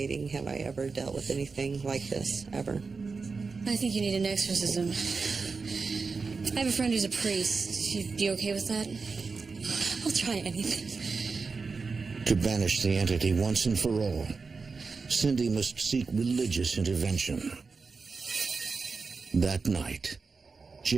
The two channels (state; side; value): quieter; left; 4.6 dB